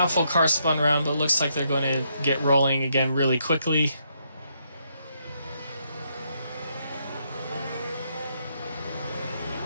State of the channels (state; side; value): inverted; both; correlation -0.76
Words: full car spun around, but looks like they're going to get rolling again really quickly.